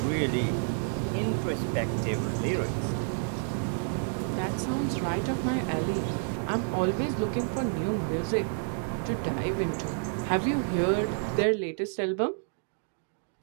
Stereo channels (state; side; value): silent; left; 58 dB below the other